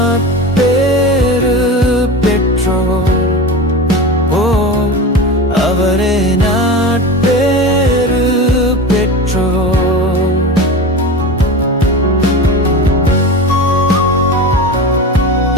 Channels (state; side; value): normal; both; correlation 0.28